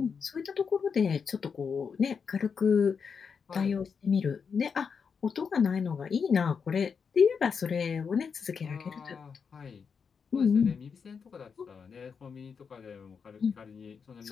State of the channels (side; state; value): right; quieter; 6.0 dB